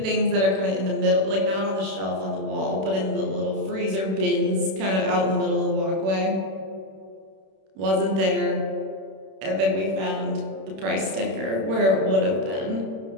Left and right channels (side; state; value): left; late; 31 ms